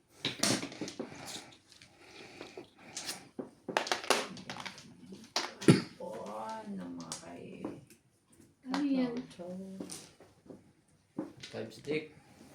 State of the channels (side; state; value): both; identical; correlation 1.00